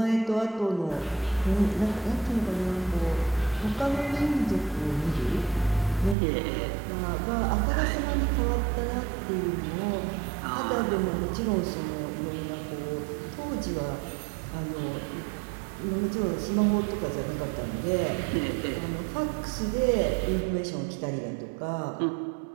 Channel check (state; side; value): drops out; left; at 6.2 s